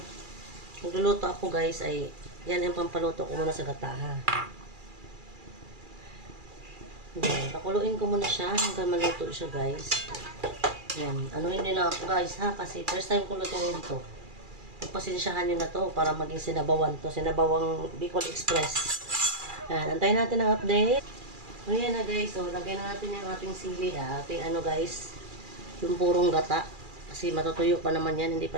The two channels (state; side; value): late; left; 2.4 ms